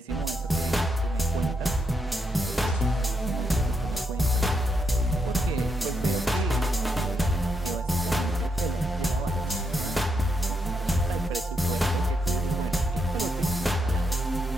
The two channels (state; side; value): normal; both; correlation 0.80